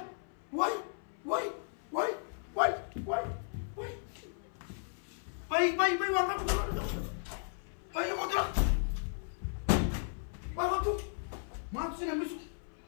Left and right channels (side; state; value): right; silent; 54 dB below the other